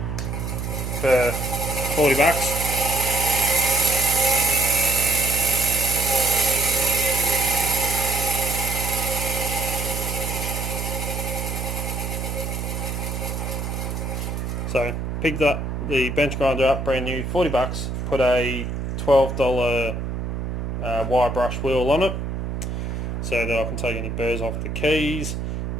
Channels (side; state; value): right; noise; hum, 3 dB below the sound